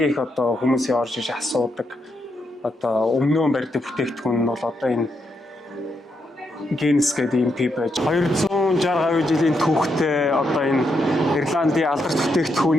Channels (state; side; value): normal; both; correlation 0.81